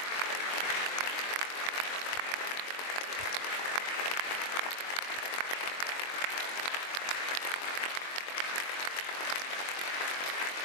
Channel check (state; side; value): late; right; 22 ms